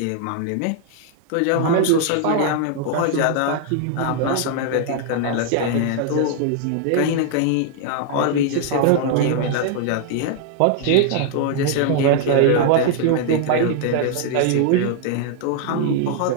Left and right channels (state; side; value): different; both; correlation 0.00